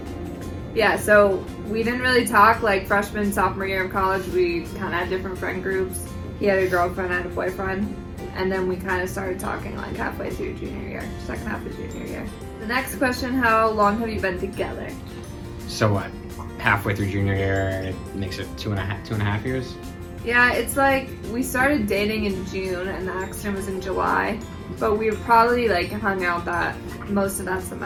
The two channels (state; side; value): identical; both; correlation 1.00